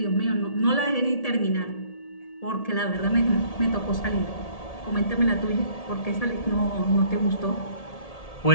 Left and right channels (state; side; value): late; right; 1.8 ms